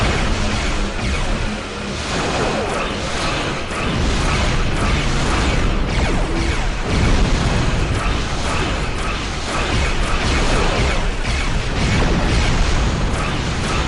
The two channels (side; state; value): both; identical; correlation 1.00